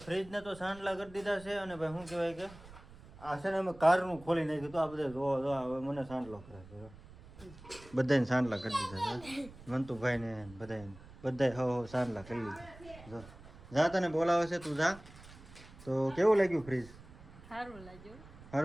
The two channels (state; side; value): noise; right; rumble, 19 dB below the sound